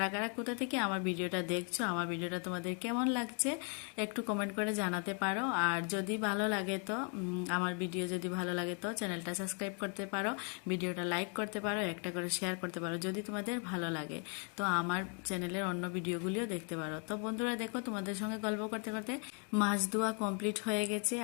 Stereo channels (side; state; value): right; quieter; 39.6 dB